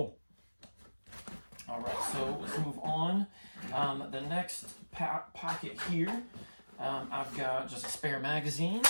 All right, so let's move on. The next pocket here, I've got just a spare magazine,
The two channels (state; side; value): inverted; both; correlation -1.00